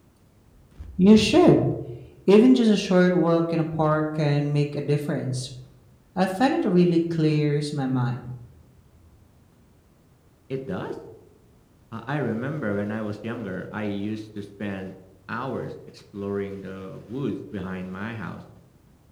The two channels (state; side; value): identical; both; correlation 1.00